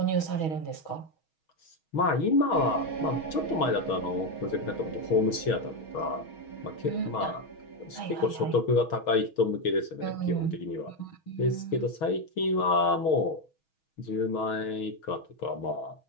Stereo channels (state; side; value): late; right; 6.3 ms